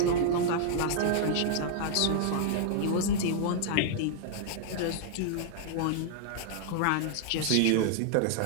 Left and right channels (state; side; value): different; both; correlation -0.01